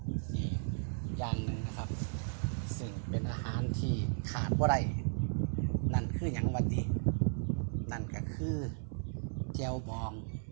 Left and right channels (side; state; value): left; silent; 54 dB below the other